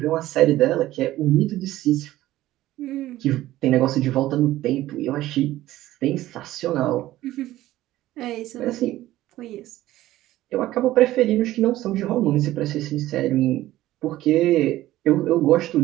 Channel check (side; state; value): left; quieter; 15.3 dB